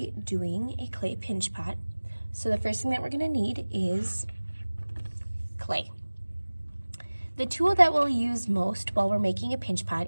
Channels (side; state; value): both; inverted; correlation -1.00